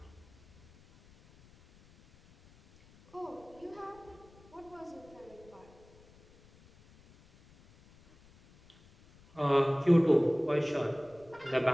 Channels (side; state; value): left; noise; rumble, 26 dB below the sound